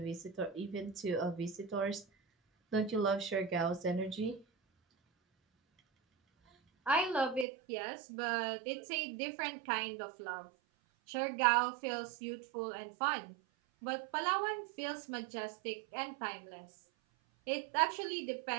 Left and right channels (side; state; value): left; drops out; at 7.5 s